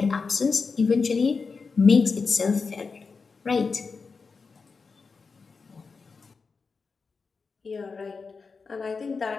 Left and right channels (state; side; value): quieter; right; 4.8 dB